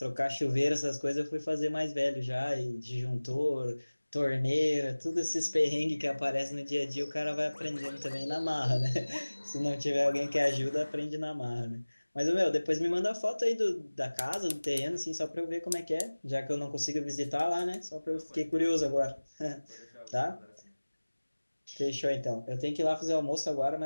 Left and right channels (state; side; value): inverted; both; correlation -1.00